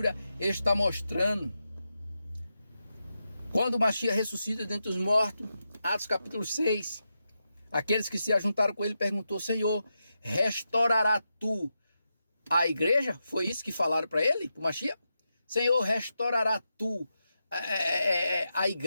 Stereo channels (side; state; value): both; inverted; correlation -0.88